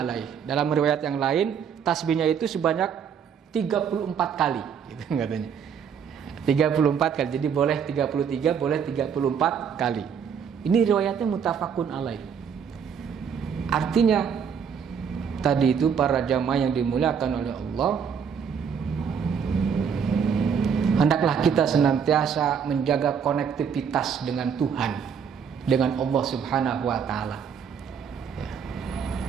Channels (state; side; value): quieter; left; 7.2 dB